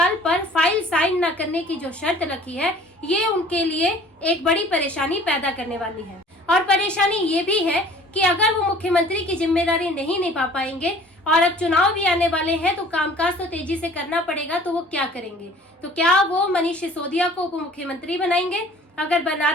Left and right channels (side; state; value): both; normal; correlation 0.50